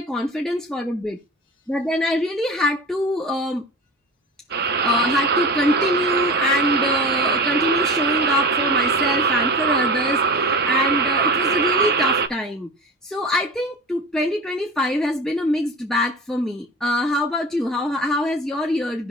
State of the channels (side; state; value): both; normal; correlation 0.32